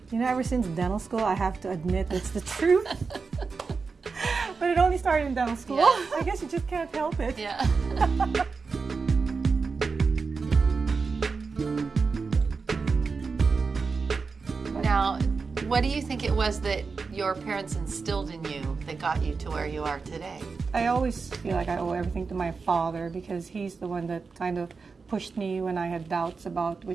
You know, ever since dental school, I have to admit it's the truth. But it only started in dental school. Yeah. I guess you just can't help it. Yeah. Now, what do you think it was that your parents instilled in you that got you to where you are today? I always feel like I owe everything to my father because he's the one that kind of pushed me when I had doubts about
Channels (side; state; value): left; quieter; 4.7 dB